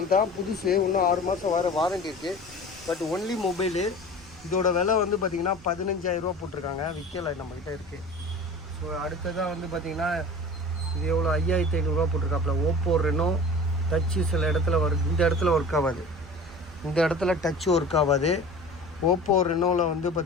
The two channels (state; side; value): noise; right; rumble, 22 dB below the sound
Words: தான், புதுசு. இன்னும் 6 மாதம் வர வாரண்டி இருக்குது. But only mobile. இதோட விலை வந்து பார்த்திங்கன்னா 15,000 போட்டிருக்காங்க. விற்கலை, நம்மக்கிட்ட இருக்குது. ஸோ அடுத்ததாக வந்து பார்த்திங்கன்னா இது எவ்வளோ, 5,500 போட்டிருக்காப்புல. ஓப்போ ரெனோ டச்சு சில இடத்துல இந்த இடத்துல ஒர்க் ஆகாது. இந்த இடத்துல டச்சு ஒர்க் ஆகாது. ஓப்போ ரெனோவில் வந்து